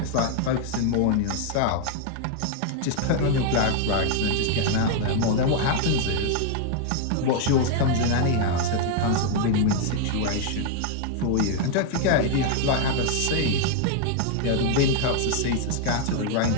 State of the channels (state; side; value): different; both; correlation 0.00